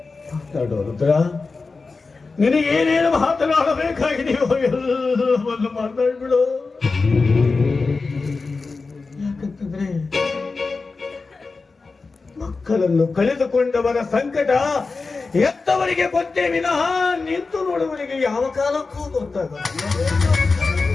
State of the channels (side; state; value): right; quieter; 4.1 dB